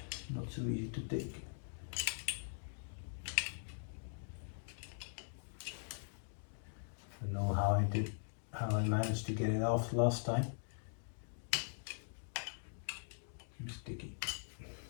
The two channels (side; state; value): right; silent; digital silence